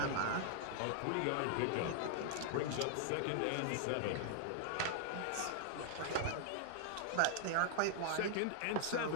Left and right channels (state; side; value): different; both; correlation 0.00